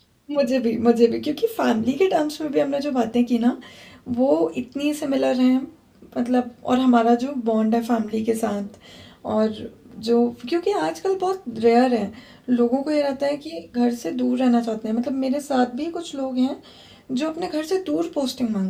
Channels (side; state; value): both; identical; correlation 1.00